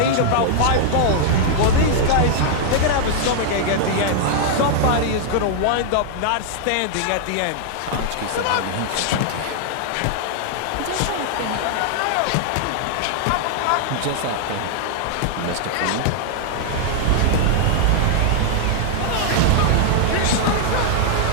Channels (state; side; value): different; both; correlation -0.01